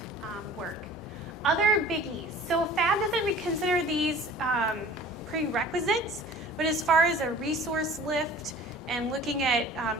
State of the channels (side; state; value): both; normal; correlation 0.45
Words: work. Other biggies. So FAB doesn't consider these prerequisites, but as far as a resource lift and looking at